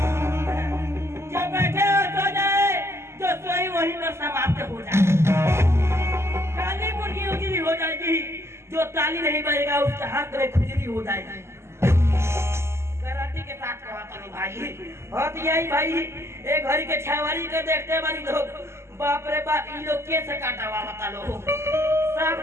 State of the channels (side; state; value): left; late; 0.13 ms